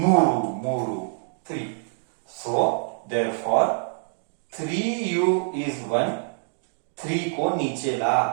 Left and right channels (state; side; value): silent; left; digital silence